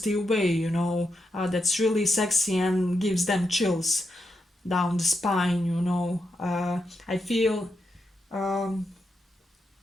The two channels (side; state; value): both; normal; correlation 0.84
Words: way, you know. That's really sexy and gives them chills down the spine, you know. I feel um,